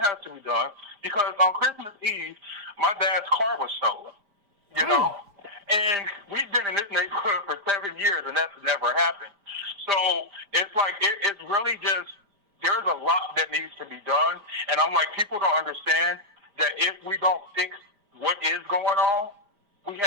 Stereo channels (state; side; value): late; left; 5.0 ms